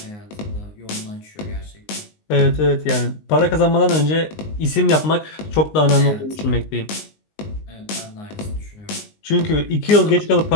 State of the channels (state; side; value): late; right; 19 ms